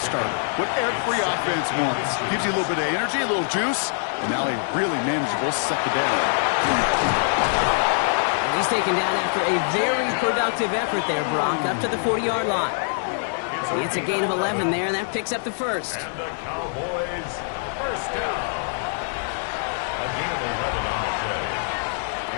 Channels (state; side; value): silent; right; 63 dB below the other